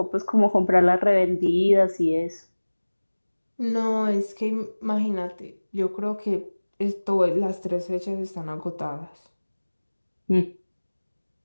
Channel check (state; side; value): inverted; both; correlation -1.00